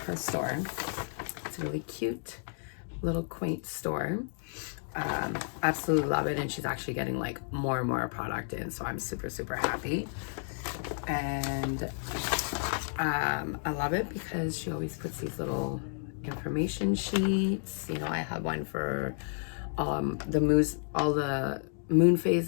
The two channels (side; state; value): right; silent; 57 dB below the other